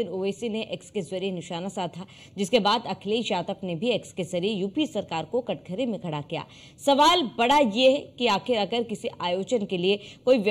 ओवैसी ने एक्स के जरिए निशाना साधा, जिसके बाद अखिलेश यादव ने भी एक्स के जरिए यूपी सरकार को कटघरे में खड़ा किया। सवाल बड़ा ये है कि आखिर अगर किसी आयोजन के लिए कोई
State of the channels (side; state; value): both; normal; correlation 0.96